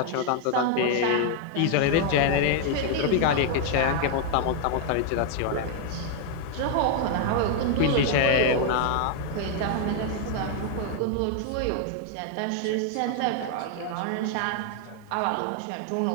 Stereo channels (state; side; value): different; both; correlation 0.00